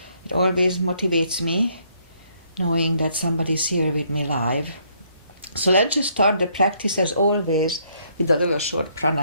It always motivates me knowing that somebody's here with me live. So let's just start the practice as always with a little short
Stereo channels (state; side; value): inverted; both; correlation -0.69